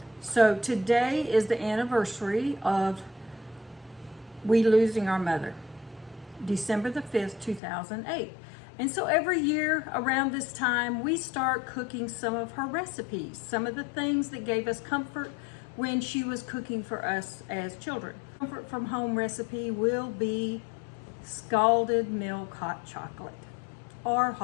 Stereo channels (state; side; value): drops out; right; at 7.6 s